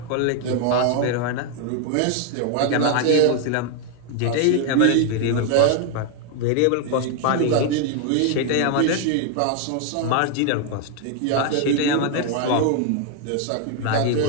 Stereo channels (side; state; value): both; different; correlation 0.00